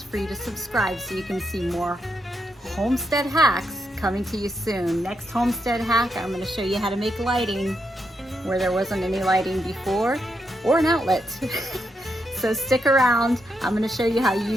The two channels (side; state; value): both; normal; correlation 0.82